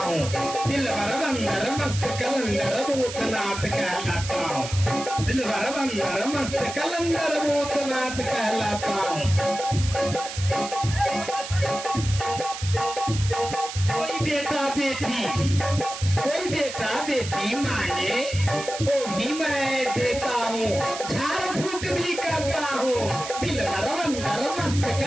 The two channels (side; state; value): right; noise; hiss, 9 dB below the sound